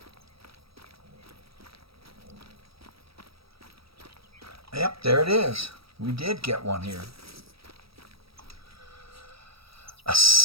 Yep, there it is. We did get one here. A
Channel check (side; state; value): left; late; 0.76 ms